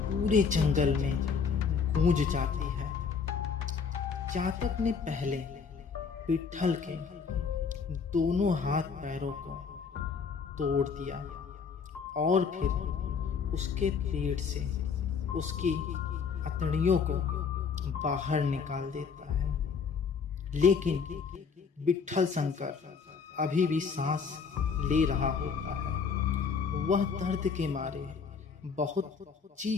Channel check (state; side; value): quieter; right; 5.8 dB